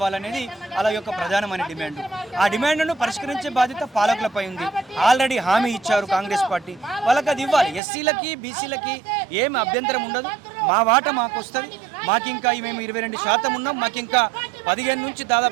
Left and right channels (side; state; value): left; drops out; at 7.8 s